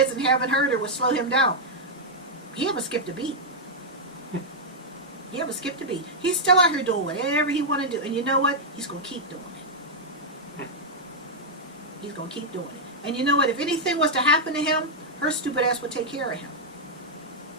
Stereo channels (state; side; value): normal; both; correlation -0.04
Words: and having her would slow him down. He haven't skipped a beat. He haven't skipped a beat. He's still out here doing whatever he want to do. And you know what? He's going to keep doing it. He's going to keep doing it. And you know what? If anything was to happen to him, her stupid ass would take care of him.